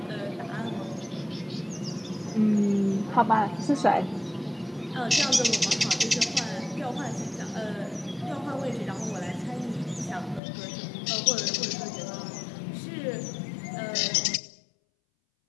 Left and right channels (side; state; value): right; drops out; at 10.4 s